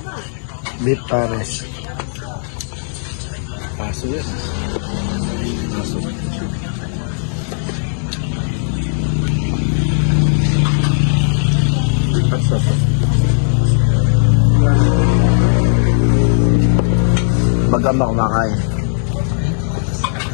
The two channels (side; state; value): right; silent; 69 dB below the other